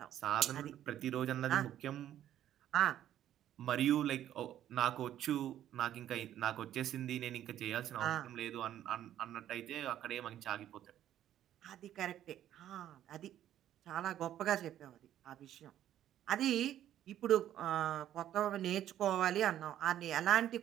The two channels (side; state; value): left; quieter; 11.6 dB